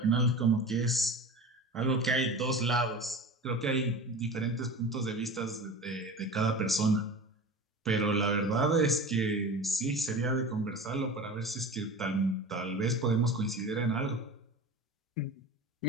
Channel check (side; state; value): both; normal; correlation 0.33